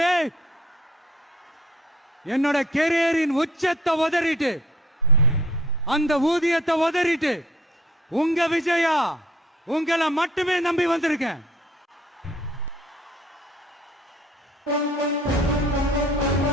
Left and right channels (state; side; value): normal; both; correlation 0.55